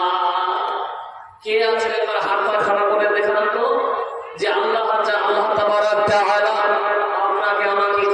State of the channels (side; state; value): both; identical; correlation 1.00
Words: কে আছে একবার হাতটা খাড়া করে দেখান তো, যে আল্লাহ তাবারক তাআলা আপনাকে আমাকে